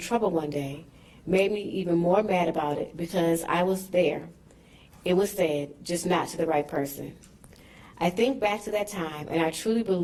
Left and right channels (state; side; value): identical; both; correlation 1.00